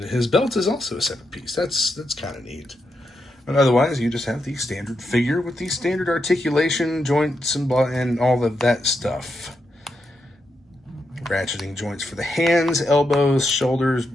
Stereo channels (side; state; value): both; normal; correlation 0.84